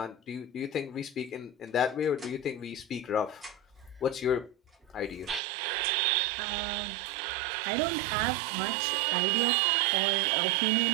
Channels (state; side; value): drops out; left; at 5.4 s